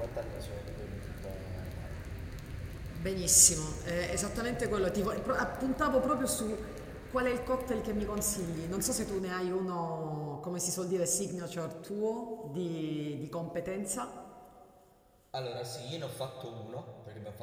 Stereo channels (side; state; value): both; identical; correlation 1.00